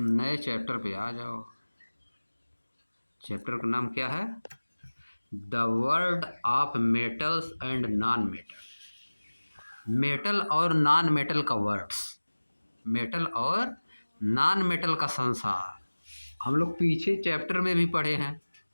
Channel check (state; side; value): inverted; both; correlation -1.00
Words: चैप्टर पे आ जाओ। चैप्टर का नाम क्या है? The world of metals and non metal. Metal और नॉन मेटल का वर्ड्स, मेटल और नॉन मेटल का संसार। हम लोग पीछे चैप्टर में भी पढ़े हैं।